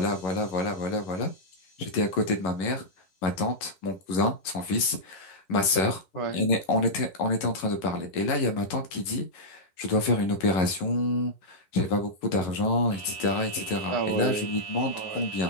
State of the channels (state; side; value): late; right; 11 ms